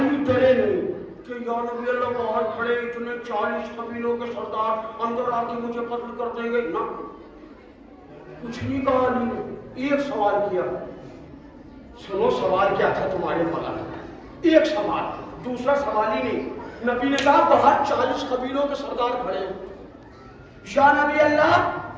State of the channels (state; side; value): identical; both; correlation 1.00